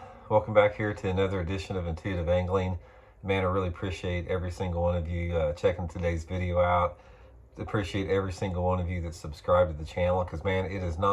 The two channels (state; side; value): identical; both; correlation 1.00